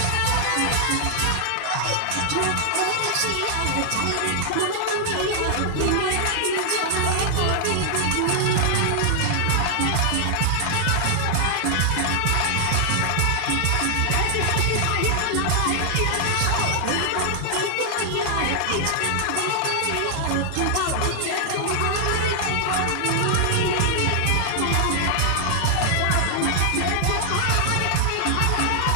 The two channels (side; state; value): both; different; correlation 0.00